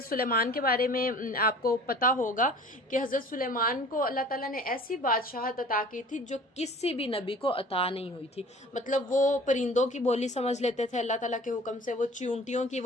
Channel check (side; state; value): both; normal; correlation 0.46